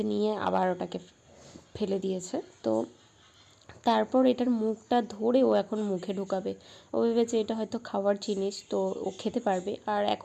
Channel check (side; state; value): both; identical; correlation 1.00